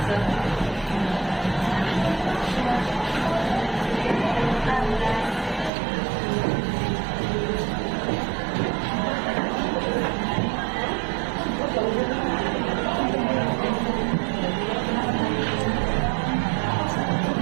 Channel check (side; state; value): left; drops out; at 5.7 s